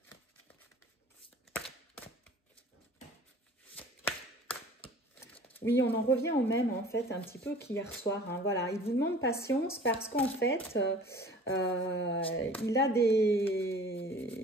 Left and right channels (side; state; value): both; normal; correlation 0.46